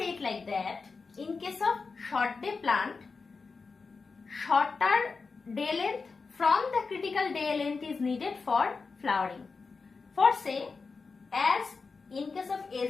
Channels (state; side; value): quieter; right; 4.6 dB